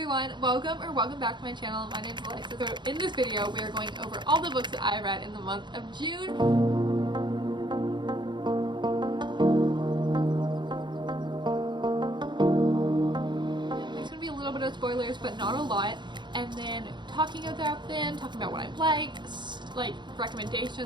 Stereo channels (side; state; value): left; late; 0.22 ms